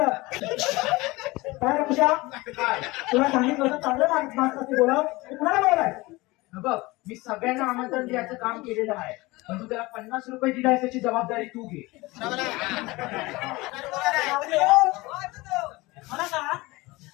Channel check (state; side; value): quieter; right; 21.8 dB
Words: काय रे पूजा, तुला सांगितलं होतं चांगलं माणूस असते बोलाव, कुणाला बोलाय. बघ, मी सगळ्यांना आमंत्रण द्यायचं काम केलेलं आहे, पण तू त्याला 50 रुपये दिलाय त्याची जबाबदारी तू घे. मला सांग,